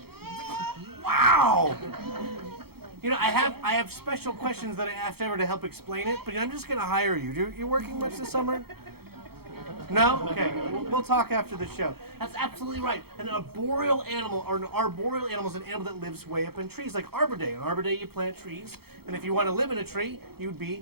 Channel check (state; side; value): late; left; 0.96 ms